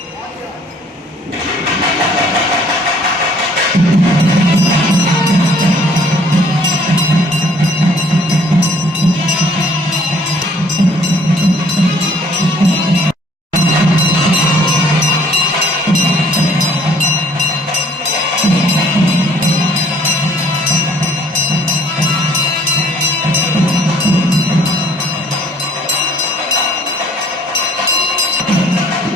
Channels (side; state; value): both; normal; correlation 0.59